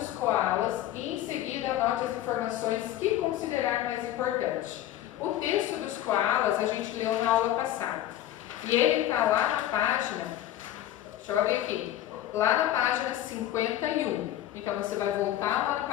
koalas e em seguida anote as informações que considerar mais importante. O texto dos koalas a gente leu na aula passada. E ele está lá na página, deixa eu ver aqui, lá na página 51. Então você vai voltar lá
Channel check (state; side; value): quieter; right; 13.0 dB